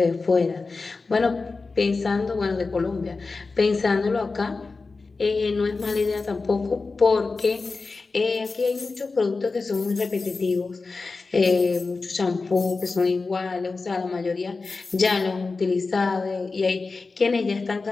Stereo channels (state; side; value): quieter; right; 4.0 dB